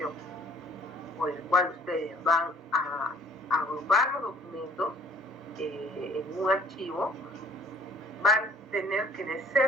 por el cual ustedes van a agrupar los documentos en un archivo, van a tener que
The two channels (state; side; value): normal; both; correlation 0.55